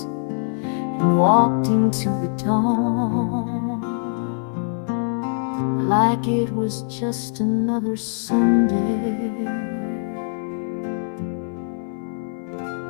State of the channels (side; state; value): right; silent; 58 dB below the other